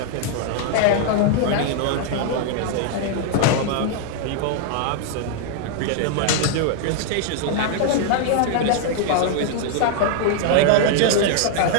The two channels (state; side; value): different; both; correlation 0.00